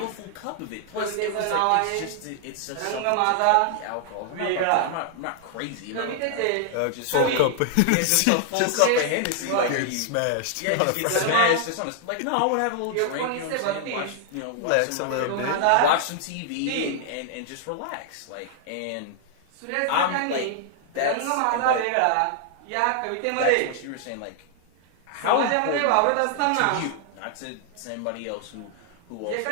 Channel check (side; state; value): both; different; correlation 0.00